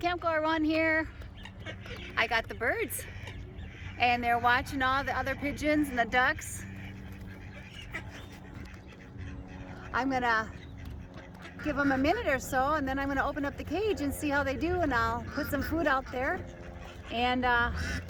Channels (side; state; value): both; identical; correlation 1.00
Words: Goer One here. I got the birds and they're watching all the other pigeons and the ducks. I'm gonna give them a minute or so and then I'm gonna open up the cage and see how they do, and I'll put some food out there and